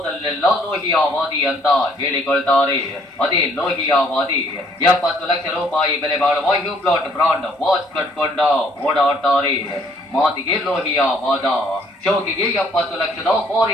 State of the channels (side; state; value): both; normal; correlation 0.63